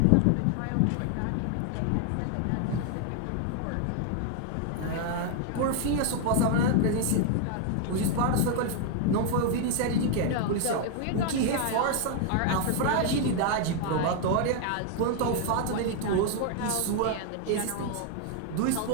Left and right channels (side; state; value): both; different; correlation 0.00